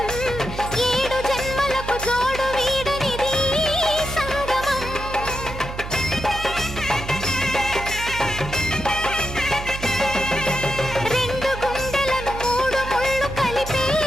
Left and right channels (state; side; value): noise; right; hum, 9 dB below the sound